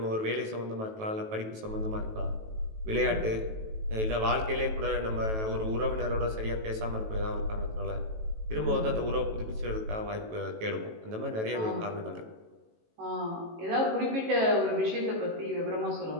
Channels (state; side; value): late; left; 18 ms